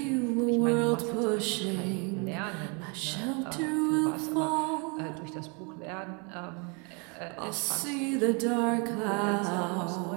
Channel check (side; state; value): left; quieter; 34.1 dB